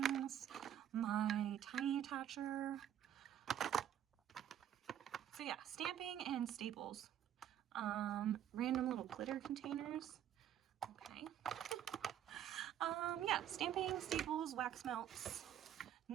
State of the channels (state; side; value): quieter; left; 10.4 dB